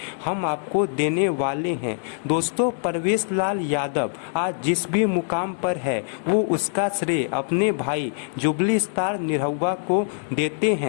हम आपको देने वाले हैं। दोस्तों, परवेश लाल यादव आज जिस भी मुकाम पर है वो उसका श्रेय अपने भाई जुबली स्टार निरहुआ को देते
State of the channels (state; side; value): silent; right; digital silence